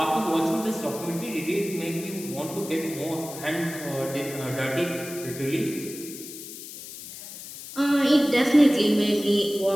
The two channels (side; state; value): left; noise; hiss, 12 dB below the sound